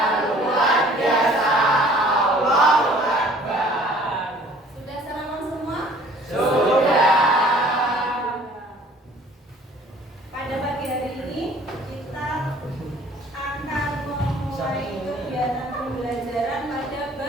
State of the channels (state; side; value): normal; both; correlation 0.53